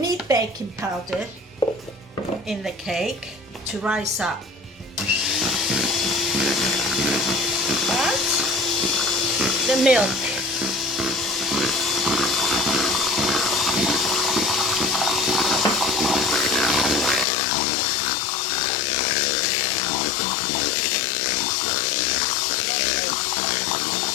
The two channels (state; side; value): drops out; right; at 17.2 s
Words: baking powder in the cake to rise up. And the milk.